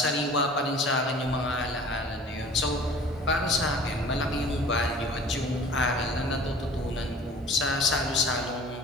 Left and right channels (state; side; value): normal; both; correlation 0.45